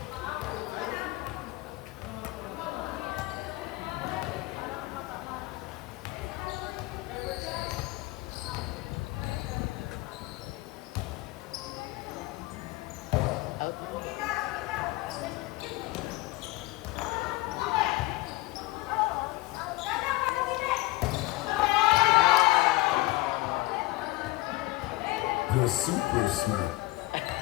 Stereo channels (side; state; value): right; quieter; 19.9 dB